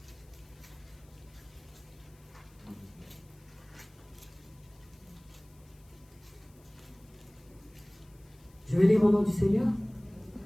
Je vais lire au nom du Seigneur.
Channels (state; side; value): noise; left; hiss, 29 dB below the sound